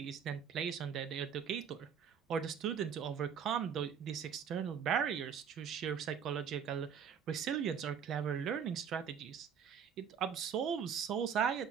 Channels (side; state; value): left; quieter; 7.5 dB